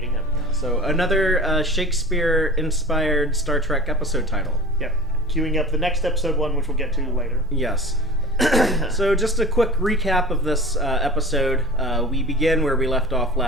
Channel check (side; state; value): both; normal; correlation 0.37